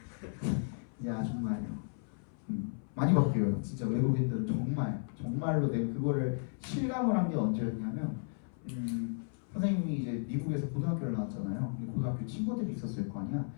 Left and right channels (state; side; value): silent; right; 55 dB below the other